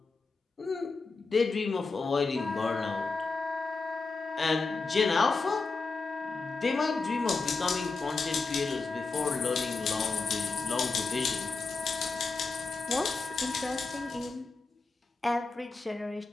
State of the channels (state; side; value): quieter; right; 4.0 dB